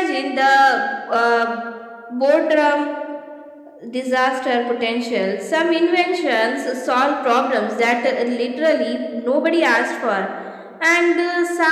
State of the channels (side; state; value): both; identical; correlation 1.00